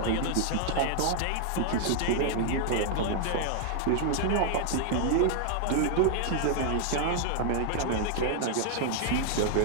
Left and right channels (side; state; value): both; different; correlation 0.00